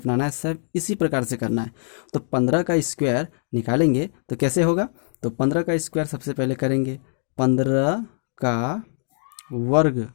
है, सब इसी प्रकार से करना है। तो 15 का स्क्वायर निकालेंगे तो कैसे होगा? तो 15 का स्क्वायर सबसे पहले करेंगे 15 का वर्ग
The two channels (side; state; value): right; silent; digital silence